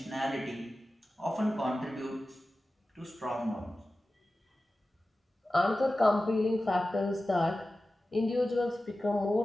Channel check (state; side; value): normal; both; correlation 0.95